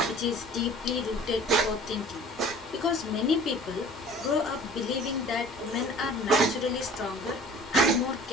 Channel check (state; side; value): normal; both; correlation 0.47